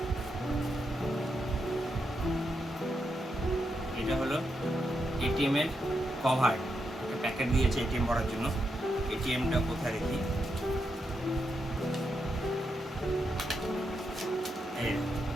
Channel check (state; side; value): normal; both; correlation 0.83